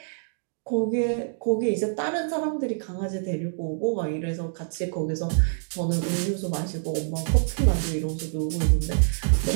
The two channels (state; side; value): silent; left; digital silence